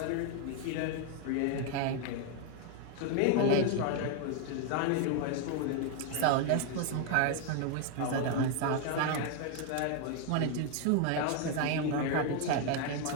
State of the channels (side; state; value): both; different; correlation 0.01